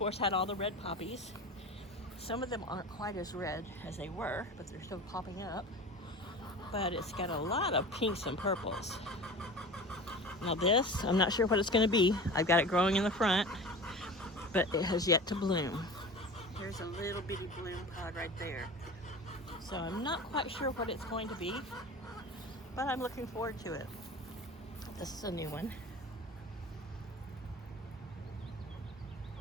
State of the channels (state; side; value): normal; both; correlation 0.35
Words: had all the red poppies. Some of them aren't quite as red as they were, but they're still popping up. But it's got a lot of pinks and purples. Now this, I'm not sure what it's going to be. I've got it growing in the front, but it has yet to bloom. There's a little bitty bloom pod right there. So I'm not quite sure what it's going to be, but I'm looking forward to it. This is a new one.